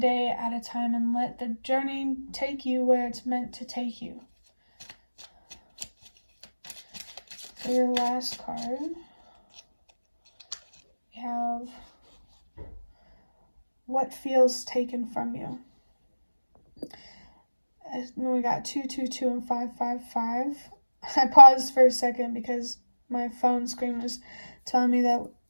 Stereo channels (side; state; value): both; inverted; correlation -1.00